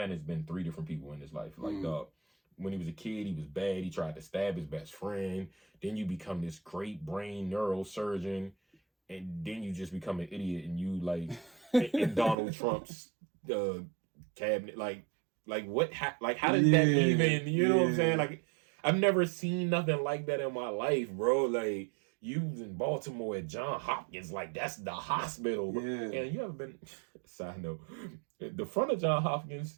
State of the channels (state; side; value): drops out; left; at 12.4 s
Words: has been 3 different people in his life. Like, when he was a kid, he was bad. He tried to stab his best friend. Then you become this great brain neurosurgeon. And then you just become an idiot, and you like in Donald Trump's cabinet, like what? How did that even? You know what I'm saying? Like, I've never seen nothing like that in my life, bro. Like, you was in Baltimore at John Hopkins, like that's the hospital. Bro. Yeah. And you ever been? Side note, the front of John